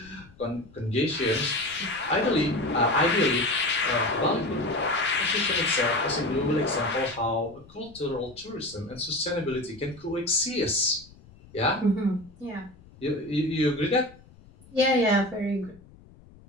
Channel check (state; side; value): noise; left; rumble, 24 dB below the sound